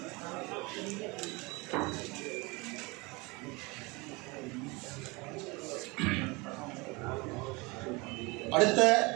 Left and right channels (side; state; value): left; quieter; 25.5 dB